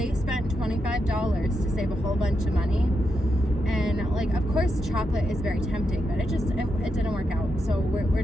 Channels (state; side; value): normal; both; correlation 0.84